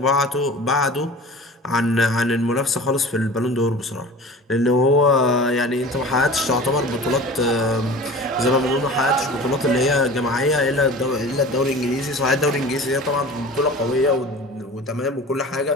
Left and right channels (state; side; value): normal; both; correlation 0.39